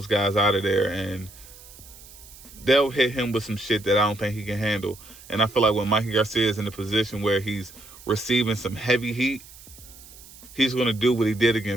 guys out of there, and they'll hit him with some shit that I don't think he can handle. And I feel like when Mikey Garcia is in a position where he's receiving some heavy heat, he's going to do what he did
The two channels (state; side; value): noise; right; hiss, 20 dB below the sound